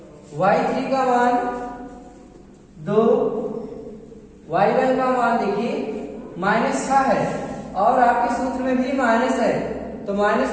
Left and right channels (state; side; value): identical; both; correlation 1.00